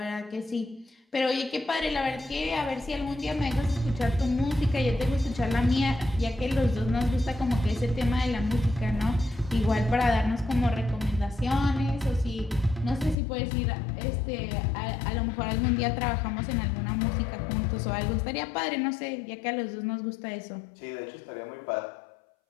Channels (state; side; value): drops out; right; at 13.2 s